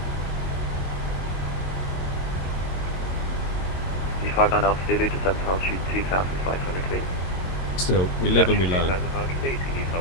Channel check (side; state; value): right; late; 22 ms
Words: 59 Alpha Zulu, descent altitude 2,500 feet. Still, we live and we learn.